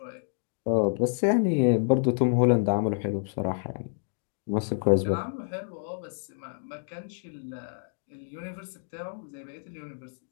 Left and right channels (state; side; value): silent; right; digital silence